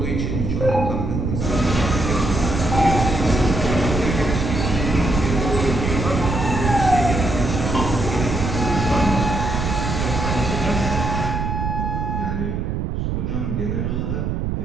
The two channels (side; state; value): right; noise; rumble, 1 dB below the sound